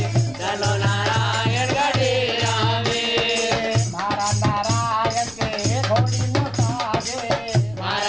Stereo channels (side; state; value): right; noise; rumble, 23 dB below the sound